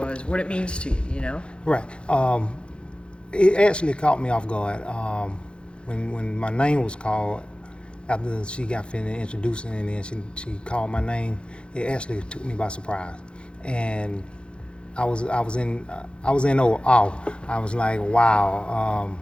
what it means to you, you know? Right. It actually caught me off guard. When my name was called, after she got finished introducing and then she called my name, it actually took me by surprise. And I was in awe. I was like, wow.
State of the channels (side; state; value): right; late; 0.056 ms